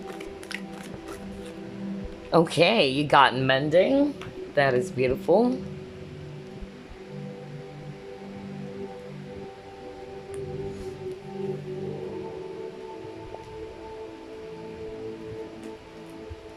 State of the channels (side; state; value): both; identical; correlation 1.00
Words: Okay, you got mending. That is beautiful.